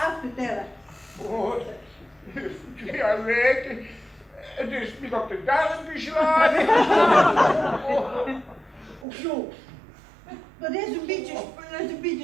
tellen. Oh, 2 weken. Het is me op de darm geslagen. Och zo. Dat is een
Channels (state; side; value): drops out; left; at 9.1 s